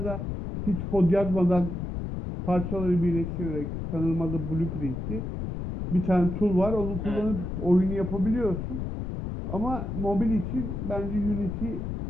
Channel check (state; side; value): noise; left; rumble, 5 dB below the sound